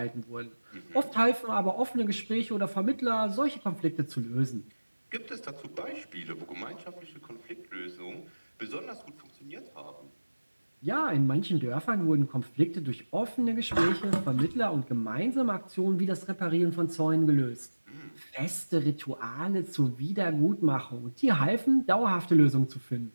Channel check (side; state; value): both; inverted; correlation -1.00